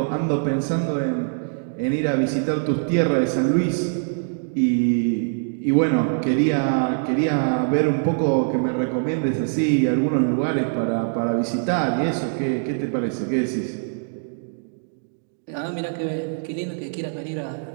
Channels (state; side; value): silent; left; digital silence